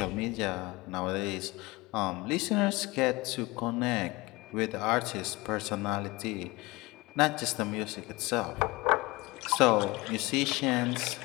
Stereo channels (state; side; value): quieter; right; 22.6 dB